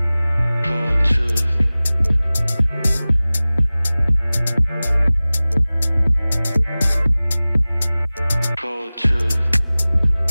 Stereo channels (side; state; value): both; inverted; correlation -0.98